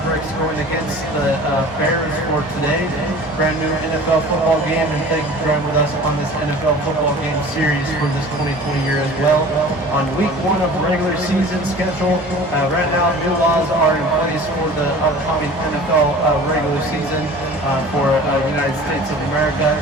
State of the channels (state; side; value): normal; both; correlation 0.43